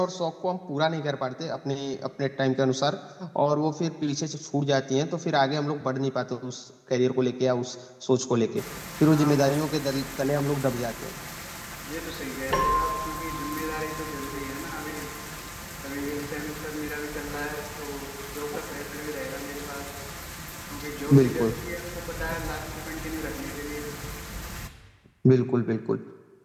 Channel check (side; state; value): both; identical; correlation 1.00